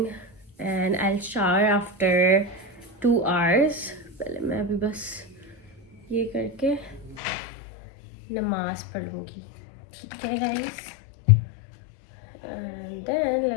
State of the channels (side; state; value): right; drops out; at 7.2 s